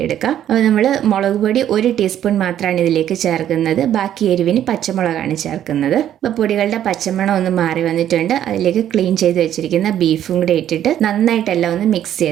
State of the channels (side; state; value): left; quieter; 10.9 dB